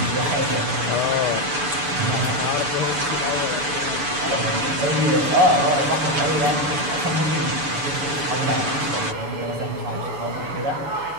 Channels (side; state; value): left; late; 6.9 ms